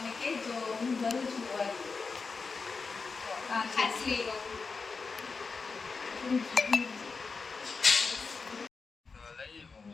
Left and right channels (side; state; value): right; quieter; 4.7 dB